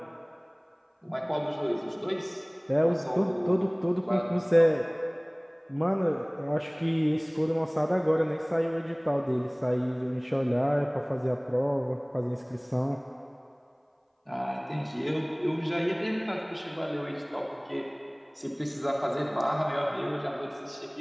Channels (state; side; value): identical; both; correlation 1.00